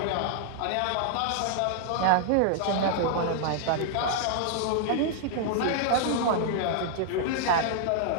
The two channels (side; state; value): both; different; correlation -0.01